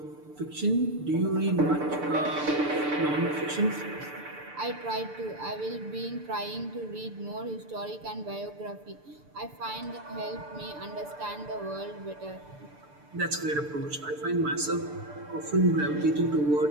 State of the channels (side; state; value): left; late; 6.8 ms